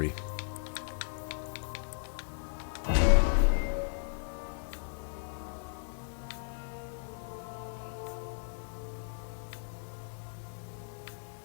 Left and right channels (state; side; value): silent; right; 54 dB below the other